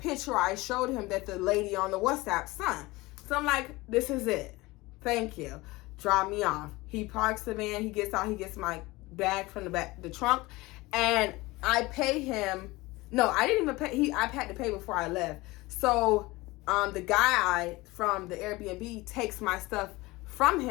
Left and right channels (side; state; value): right; quieter; 21.3 dB